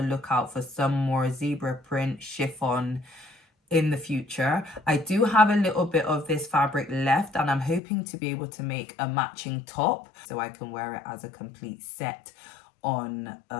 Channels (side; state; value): right; drops out; at 7.8 s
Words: lookout for some more zebra print chiffon in the future. I do have a little bit of this fabric left, and I'm hoping to be able to make a matching top so I can wear it as a complete set on